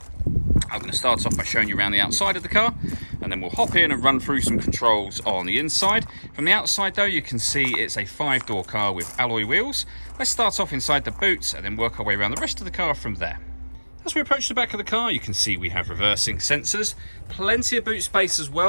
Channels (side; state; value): both; inverted; correlation -1.00